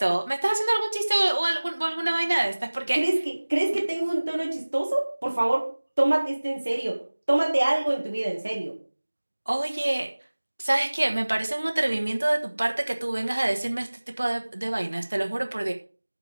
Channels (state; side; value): inverted; both; correlation -1.00